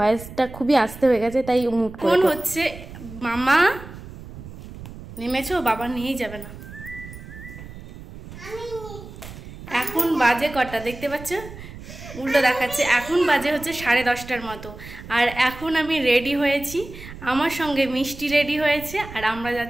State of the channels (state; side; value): noise; right; rumble, 14 dB below the sound